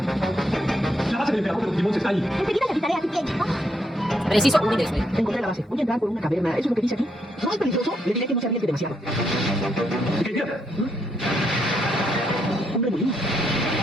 La base del emperador de los Digimons está ahí. Enseguida le avisaré a ti, Ken. Preciso, un intereso, Encontré la base. Voy a entrar por una caverna. ¿Eso es lo que dice aquí? ¿No es peligroso? Le diré que no se arriesgue demasiado. Ok, mira. Un remolino.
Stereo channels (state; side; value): normal; both; correlation 0.77